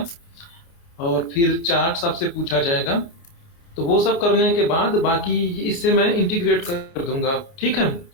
और फिर चार्ट्स आपसे पूछा जाएगा। तो वो सब करने के बाद बाकी इससे मैं इंटीग्रेट कर दूंगा, ठीक है,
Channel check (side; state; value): right; late; 29 ms